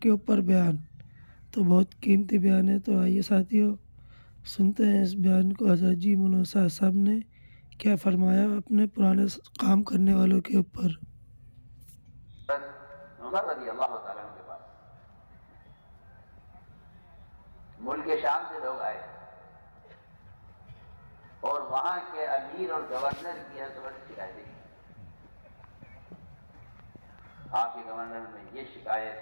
اوپر بیان تو بہت قیمتی بیان ہے۔ تو آئیے ساتھیوں سنتے ہیں اس بیان کو، حضرت جی مولانا سعد صاحب نے کیا فرمایا اپنے پرانے کام کرنے والوں کے اوپر۔ عمر رضی اللہ تعالیٰ عنہ کے پاس ملک شام سے لوگ آئے اور وہاں کے امیر اور گورنر کی حضرت شکایتیں کی، آپ کے گورنر میں یہ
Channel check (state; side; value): inverted; both; correlation -1.00